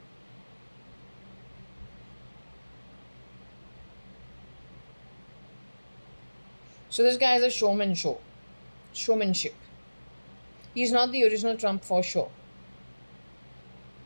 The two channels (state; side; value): inverted; both; correlation -1.00